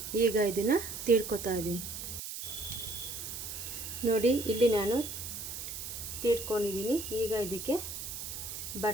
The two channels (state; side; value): noise; right; hiss, 7 dB below the sound